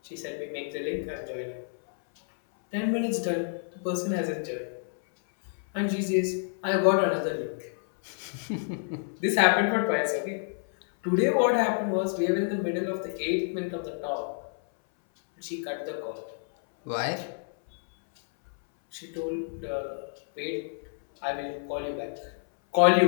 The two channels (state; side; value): silent; right; 59 dB below the other